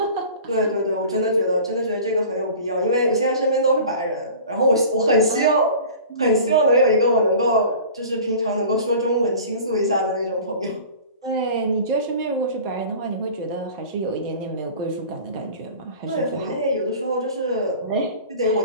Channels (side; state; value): both; inverted; correlation -0.41